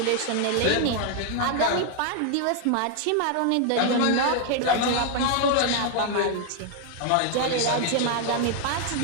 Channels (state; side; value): different; both; correlation 0.00